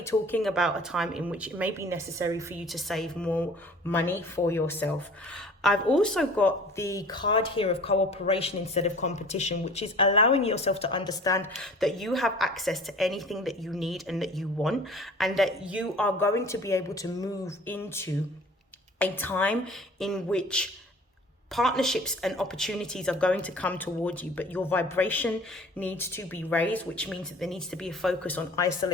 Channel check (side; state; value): both; normal; correlation 0.47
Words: talking about a time in which it may be necessary for you to save more money for yourself. I've also got the card here of cooperation instead of competition, which is allowing yourself to understand that you have access to anything that you need and that you want, and that you are going to be able to move into a time in which partnerships and opportunities are going to come towards you, but your vibration needs to be raised, which means that there needs to be a focus on